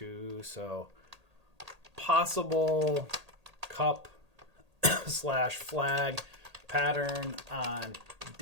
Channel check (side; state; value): left; late; 1.8 ms